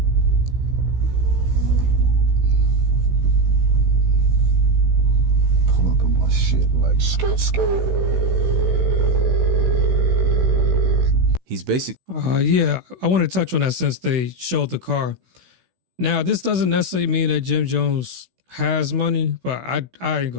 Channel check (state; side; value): late; left; 16 ms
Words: Like skirt. He's basically Yeah, I want to touch on that since they showed the car. Now, this doesn't necessarily mean that Jim Jones has money, but